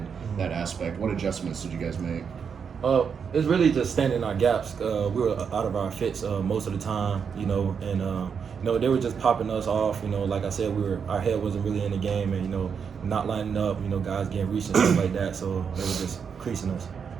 that aspect. What adjustments did you guys make? It's really just standing our gaps. We were out of our fits most of the time, and they were just popping us off. Like I said, our head wasn't really in the game, and not lining up. Guys getting reached and stuff like that. So they were just creasing us.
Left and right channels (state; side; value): quieter; left; 6.6 dB